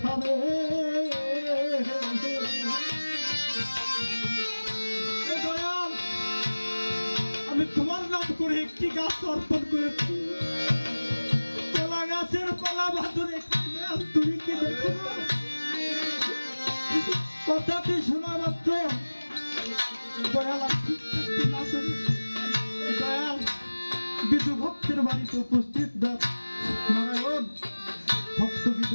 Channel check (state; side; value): inverted; both; correlation -1.00